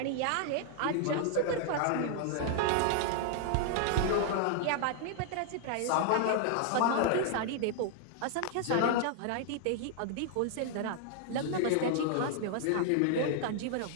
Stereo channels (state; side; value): different; both; correlation -0.01